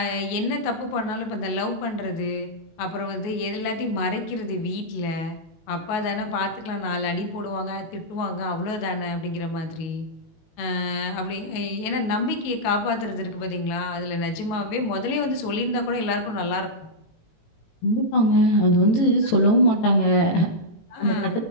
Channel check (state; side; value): late; right; 19 ms